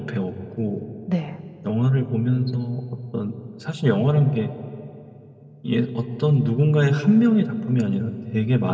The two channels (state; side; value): identical; both; correlation 1.00